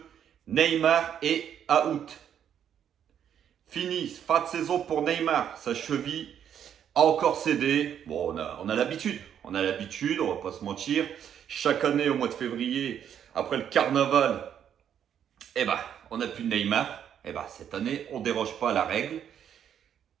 Neymar est out. Fini, fin de saison pour Neymar, sa cheville a encore cédé. Bon, on a l'habitude. On a l'habitude, on va pas se mentir. Chaque année, au mois de février, après le carnaval, on n'a plus de Neymar. Cette année, on déroge pas à la règle.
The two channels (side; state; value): left; quieter; 9.1 dB